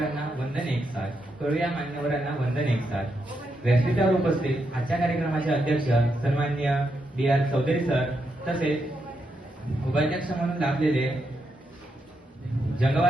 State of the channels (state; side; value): normal; both; correlation 0.82